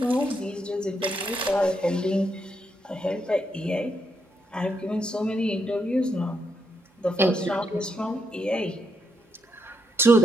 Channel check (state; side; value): normal; both; correlation 0.79